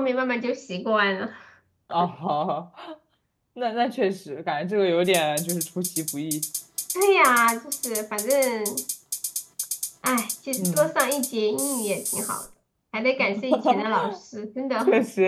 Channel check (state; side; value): identical; both; correlation 1.00